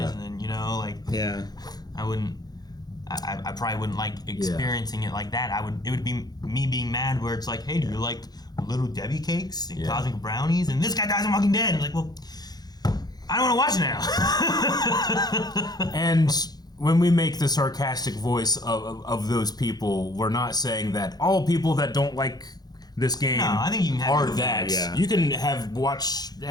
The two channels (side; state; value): right; late; 0.19 ms